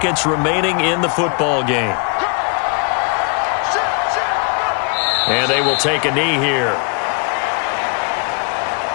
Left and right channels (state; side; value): quieter; right; 35.9 dB